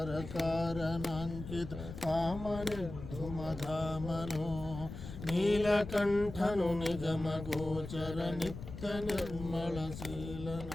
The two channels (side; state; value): left; noise; rumble, 10 dB below the sound